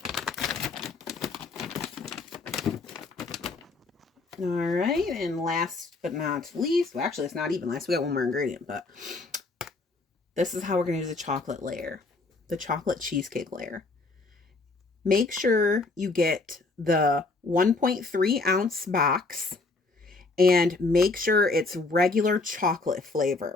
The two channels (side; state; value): right; quieter; 3.6 dB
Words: All right, and last but not least, well, actually, it's not even last. We got one more ingredient, but this is how we're going to use the chocolate layer, the chocolate cheesecake layer. Make sure you get the 1.3 ounce box and make sure it's regular chocolate